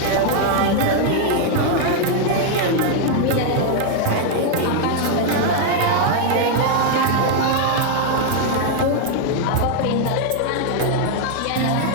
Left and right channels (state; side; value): different; both; correlation 0.00